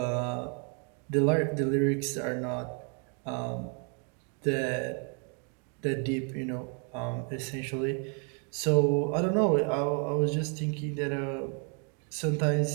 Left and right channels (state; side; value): quieter; left; 39.6 dB